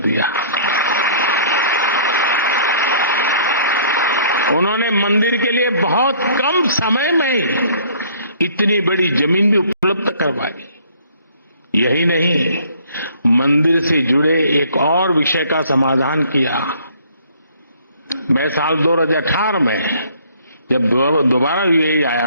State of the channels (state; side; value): inverted; both; correlation -0.57